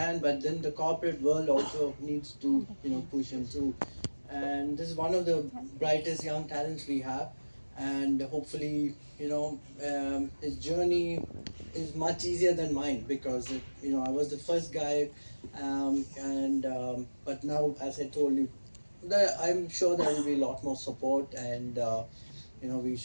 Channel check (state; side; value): inverted; both; correlation -1.00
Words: but then the corporate world also needs to push him through. And this is one of the brightest young talents we have. And hopefully his journey is much easier than mine, because I was the first guy. And but now, as I told you, I'm sure there will be a lot more support. And we